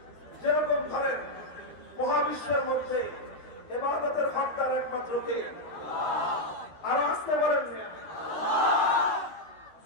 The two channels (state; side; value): late; right; 13 ms